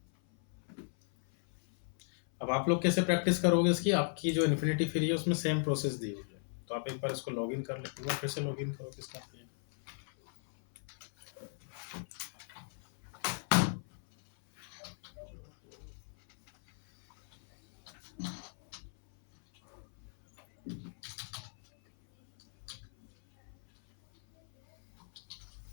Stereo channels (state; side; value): silent; right; 53 dB below the other